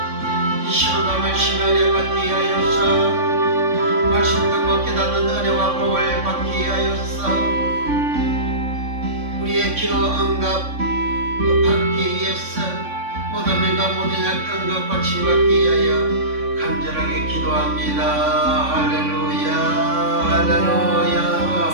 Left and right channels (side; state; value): left; late; 3.5 ms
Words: 이 시간과 말씀 은혜 받기 위하여서 말씀 듣고 깨닫는 은혜와 복을 받기 위하여서 우리의 기도 응답 받기 위해서 모든 민과 모든 약한 것 고침받기 위하여 간절하게 기도합니다. 할렐루야 할렐루야